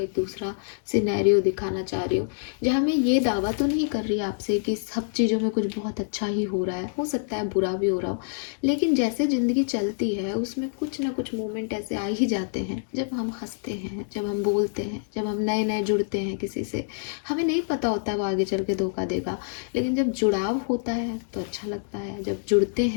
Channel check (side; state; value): right; silent; digital silence